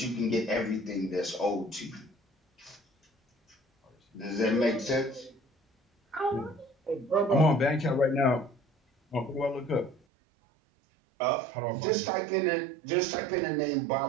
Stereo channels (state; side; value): drops out; left; at 10.0 s